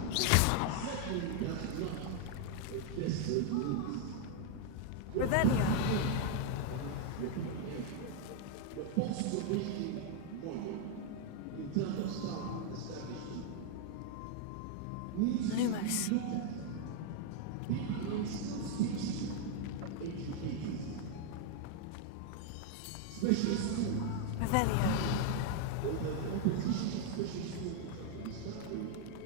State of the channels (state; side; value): different; both; correlation 0.01